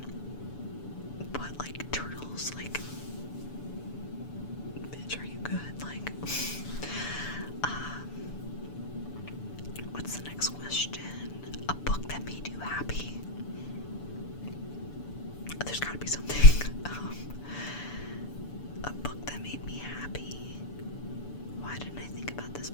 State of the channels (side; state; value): right; late; 6.9 ms